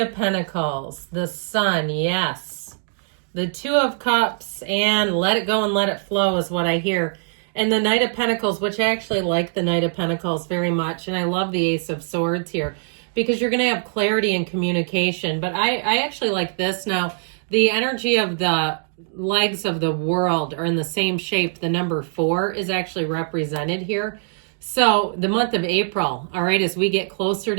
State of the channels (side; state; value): left; silent; digital silence